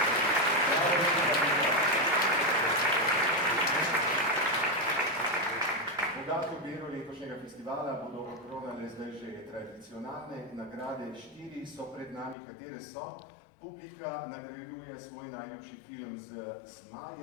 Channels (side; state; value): right; drops out; at 12.4 s